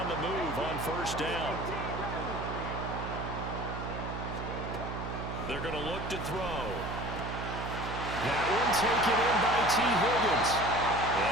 the move on first down. They're going to look to throw. That one taken in by T. Higgins.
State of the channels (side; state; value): right; noise; hum, 6 dB below the sound